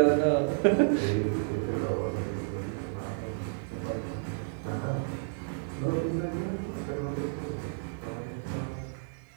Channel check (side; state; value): left; silent; 57 dB below the other